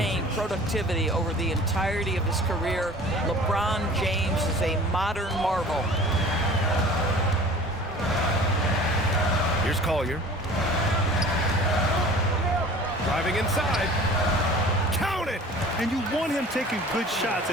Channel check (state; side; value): normal; both; correlation 0.44